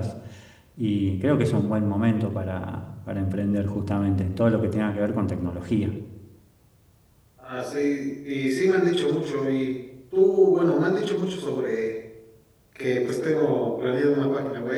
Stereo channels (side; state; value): both; identical; correlation 1.00